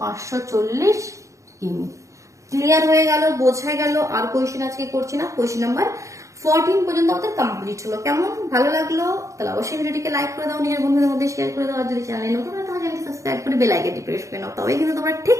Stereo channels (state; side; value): late; left; 0.15 ms